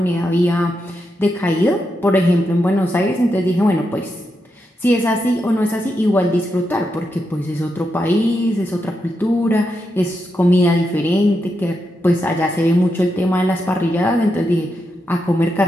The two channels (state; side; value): normal; both; correlation 0.85